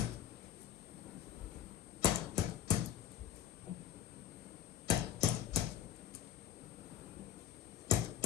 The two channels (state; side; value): quieter; right; 10.7 dB